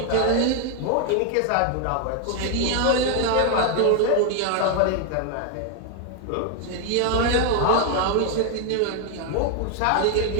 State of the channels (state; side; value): different; both; correlation 0.00